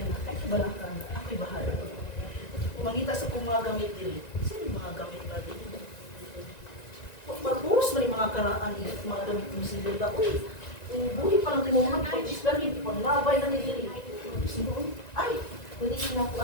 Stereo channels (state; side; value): late; right; 1.9 ms